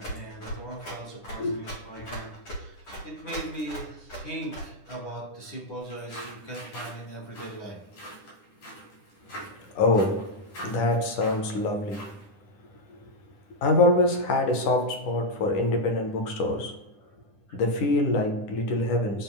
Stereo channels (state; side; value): late; right; 10 ms